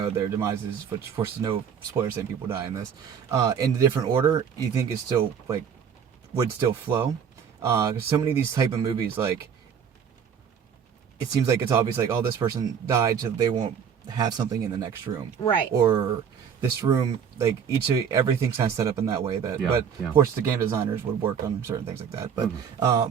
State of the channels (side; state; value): left; quieter; 7.5 dB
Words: demises, which of course there's no spoilers saying people die in this, in a different order, you think it's still would still flow. Because so many of these type of movies, it seems like it's obvious, this person died, so they won't have something in the next room, right? Or this room, everything's kind of set up in that way. But of course, the game designers would work on certain things like that. But